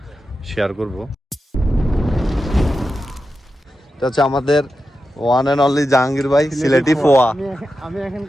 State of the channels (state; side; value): normal; both; correlation 0.90